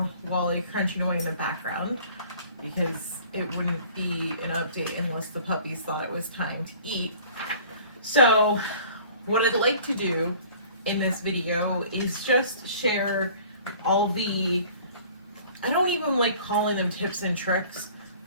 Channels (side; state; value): both; inverted; correlation -0.49